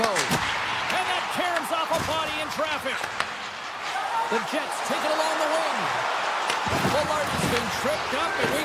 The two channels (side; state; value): both; identical; correlation 1.00